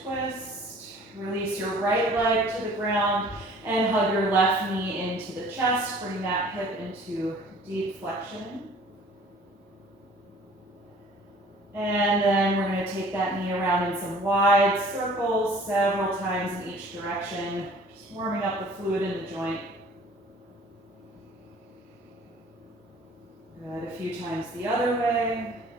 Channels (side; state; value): both; normal; correlation 0.51